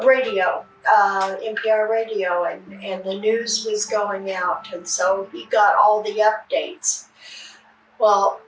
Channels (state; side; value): identical; both; correlation 1.00